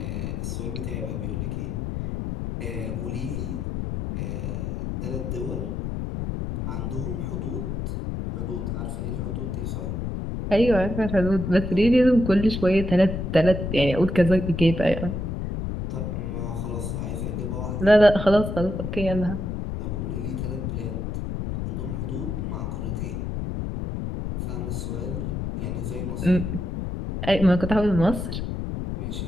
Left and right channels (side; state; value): left; noise; rumble, 3 dB below the sound